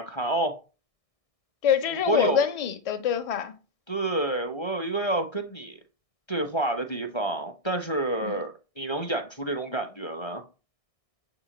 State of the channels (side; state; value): right; late; 1.6 ms